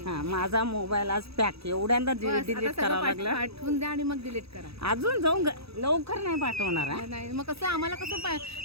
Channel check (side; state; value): left; late; 0.77 ms